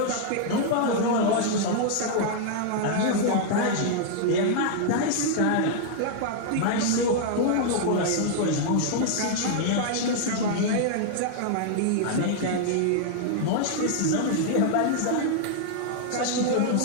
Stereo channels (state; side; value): different; both; correlation -0.01